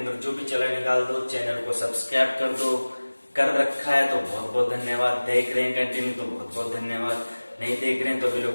जो भी चला निकाल दो। चैनल को सब्सक्राइब कर दो। कर रखा है तो बहुत बहुत धन्यवाद। देख रहे हैं कंटिन्यू तो बहुत बहुत धन्यवाद। नहीं देख रहे हैं तो भी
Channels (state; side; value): inverted; both; correlation -1.00